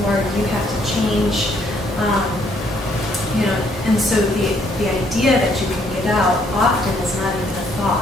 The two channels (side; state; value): both; normal; correlation 0.68